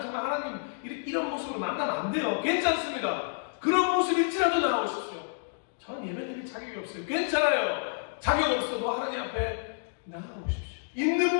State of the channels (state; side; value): silent; right; digital silence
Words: 정말 하나님 이런 모습으로 만나면 안 돼요. 괜찮습니다. 그런 모습일지라도 나오십시오. 저는 예배드릴 자격이 없어요. 괜찮아요. 자격 없어도 하나님 앞에 나아오십시오. 있는